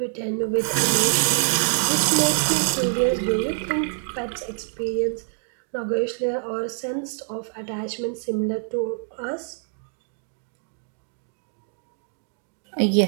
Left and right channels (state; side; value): silent; left; digital silence